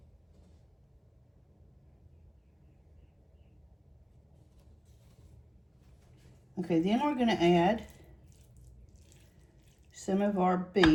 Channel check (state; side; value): identical; both; correlation 1.00